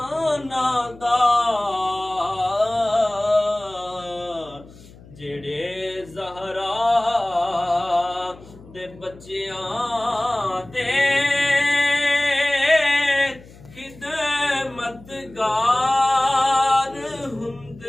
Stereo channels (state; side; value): noise; left; hum, 21 dB below the sound